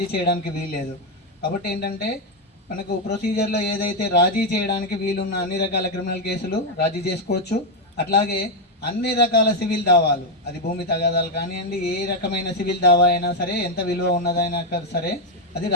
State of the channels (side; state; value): both; normal; correlation 0.03